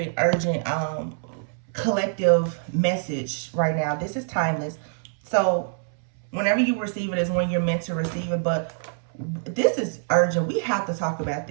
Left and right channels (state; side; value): silent; left; 62 dB below the other